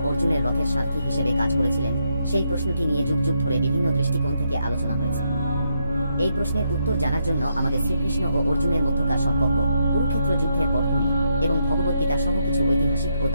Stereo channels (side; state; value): both; inverted; correlation -0.78